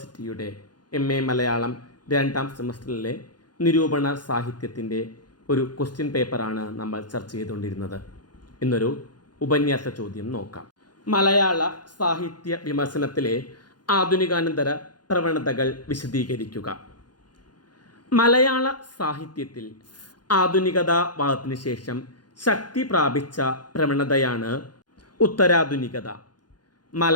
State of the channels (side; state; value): right; late; 0.70 ms